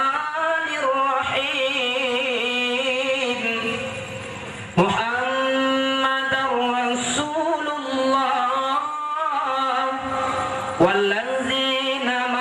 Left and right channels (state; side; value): identical; both; correlation 1.00